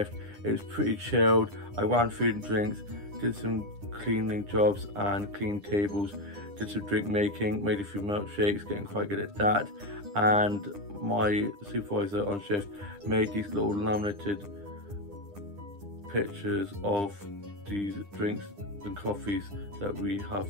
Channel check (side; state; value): left; late; 9.9 ms